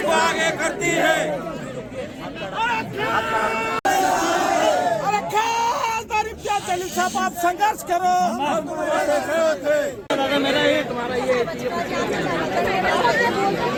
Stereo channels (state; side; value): identical; both; correlation 1.00